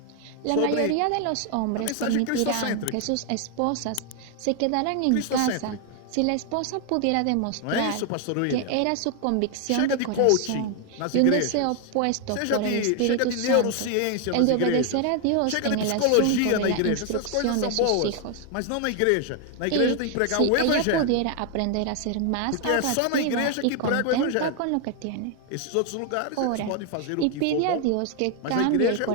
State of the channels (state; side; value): different; both; correlation 0.00